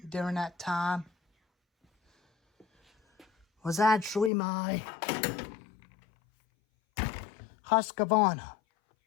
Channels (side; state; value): right; drops out; at 4.3 s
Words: during that time, was actually my Husqvarna.